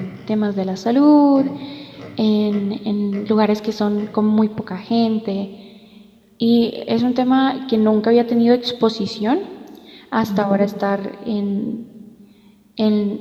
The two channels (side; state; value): both; identical; correlation 1.00